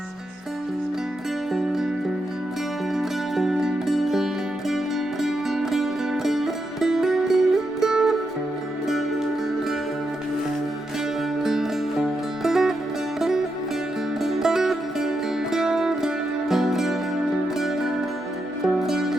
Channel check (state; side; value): normal; both; correlation 0.84